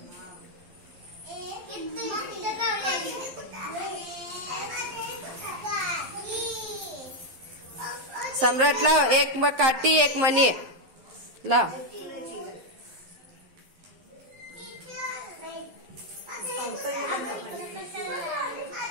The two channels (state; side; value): late; left; 11 ms